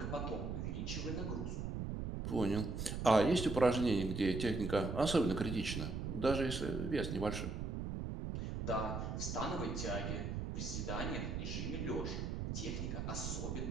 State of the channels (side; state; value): right; noise; rumble, 3 dB below the sound